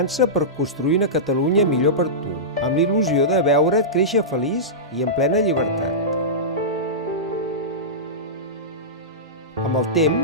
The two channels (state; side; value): normal; both; correlation -0.16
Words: per construir una Catalunya millor per tu, amb l'il·lusió de veure't créixer feliç i en plena llibertat. Amb el